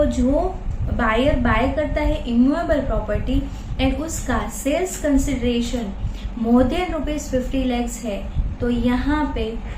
जो बायर बाय करता है इमूवेबल प्रॉपर्टी एंड उसका sales consideration more than ₹50 lakhs है, तो यहाँ पे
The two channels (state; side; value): identical; both; correlation 1.00